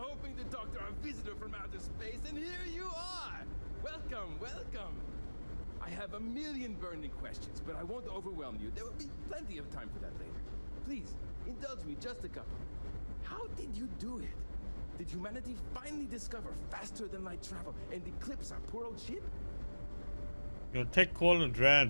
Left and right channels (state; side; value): inverted; both; correlation -1.00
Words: to talk to our visitor from outer space, and here you are! Welcome, welcome! I have a million burning questions, but I won't overwhelm you. There will be plenty of time for that later. Please, indulge me just a couple. How did you do it? Did humanity finally discover faster than light travel and eclipse our poor old ship? Your tech called a